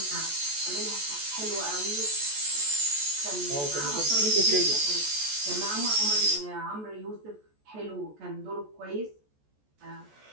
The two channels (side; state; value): left; late; 14 ms